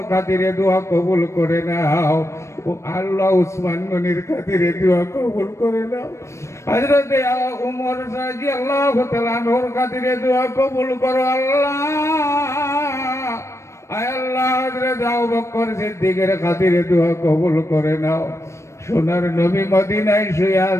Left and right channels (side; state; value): right; late; 0.13 ms